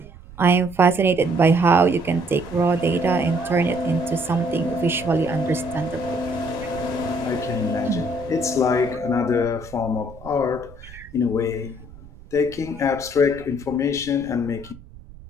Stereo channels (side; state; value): right; noise; rumble, 19 dB below the sound